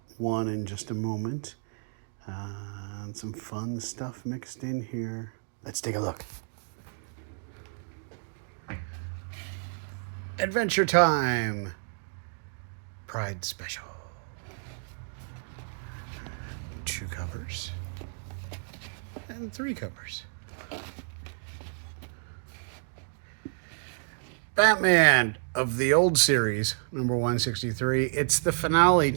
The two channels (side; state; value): left; silent; digital silence